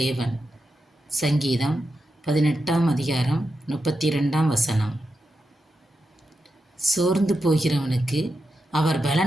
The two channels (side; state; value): both; normal; correlation 0.88